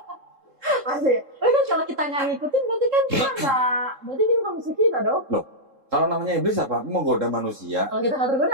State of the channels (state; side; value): late; left; 3.7 ms